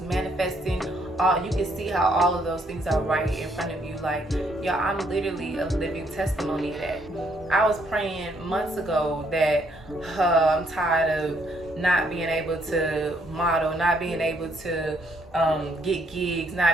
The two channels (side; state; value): both; normal; correlation 0.70